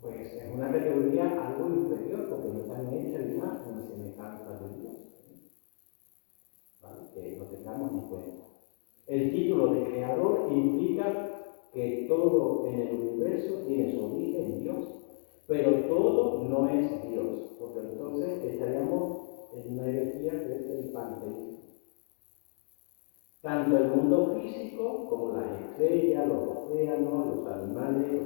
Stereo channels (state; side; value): silent; right; digital silence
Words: es una categoría algo inferior, porque no están hechos a imagen y semejanza de Dios, ¿vale?, que lo tengamos en cuenta. El título de creador implica que todo en el universo tiene su origen en Dios, pero todo no es Dios, porque entonces estaríamos en una herejía que es el panteísmo. Tanto el mundo físico como las estrellas, los océanos, los animales,